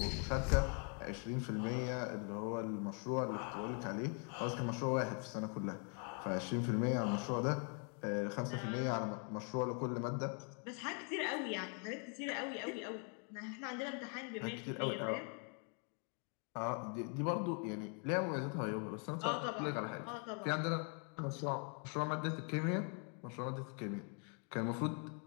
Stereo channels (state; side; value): quieter; right; 39.8 dB